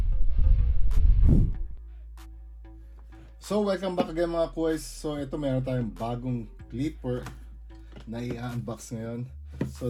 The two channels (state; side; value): identical; both; correlation 1.00